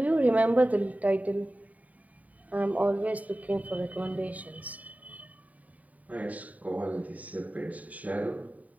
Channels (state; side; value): late; left; 0.072 ms